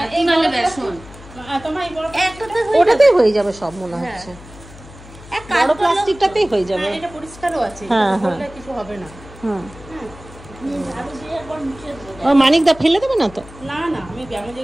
ওটাতেই হয়ে যাবে সব মনে হচ্ছে, বড় প্লাস্টিকটাতেই হয়ে যাবে। এটা পরিষ্কারও আছে, কিছু হবে না। মানিকদা ফেলে দেবে না তো? না না, আমি ব্যায়ামের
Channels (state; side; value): noise; left; hum, 19 dB below the sound